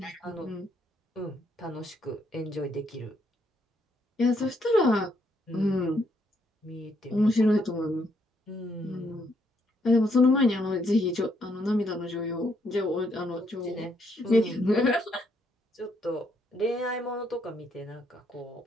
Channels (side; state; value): both; normal; correlation 0.73